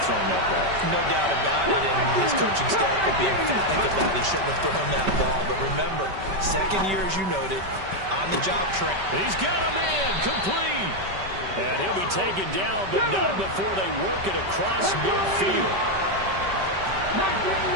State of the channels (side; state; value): left; late; 5.2 ms